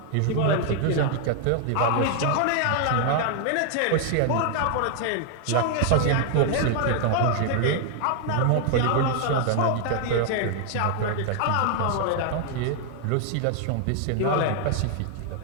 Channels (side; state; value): both; different; correlation 0.00